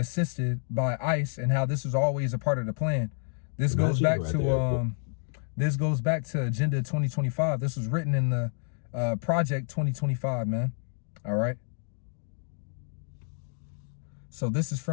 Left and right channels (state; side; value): silent; right; digital silence